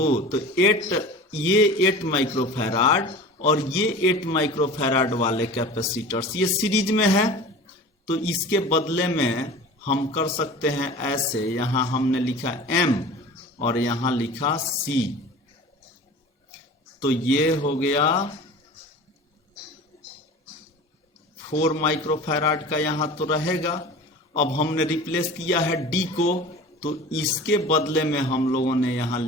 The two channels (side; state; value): both; normal; correlation 0.38